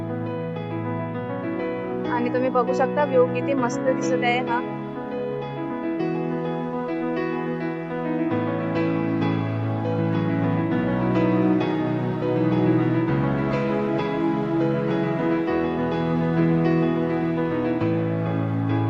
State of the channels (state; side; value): identical; both; correlation 1.00